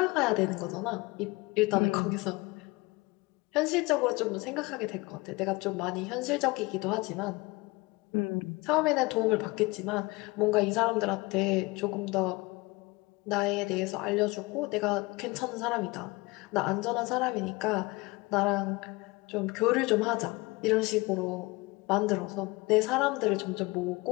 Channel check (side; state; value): right; quieter; 23.9 dB